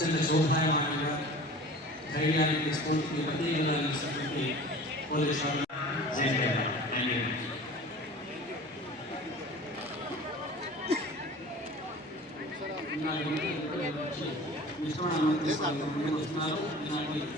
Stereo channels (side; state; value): both; normal; correlation 0.41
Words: శోభాయమానంగా ధైర్యానికి స్ఫూర్తిని ప్రత్యేకంగా అందిస్తున్నటువంటి పోలీసు